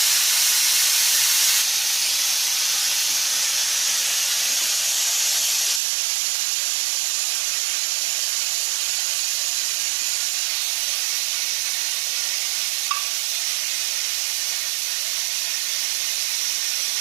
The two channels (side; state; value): left; drops out; at 5.8 s